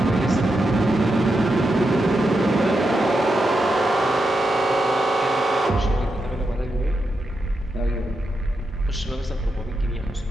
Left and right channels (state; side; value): normal; both; correlation 0.86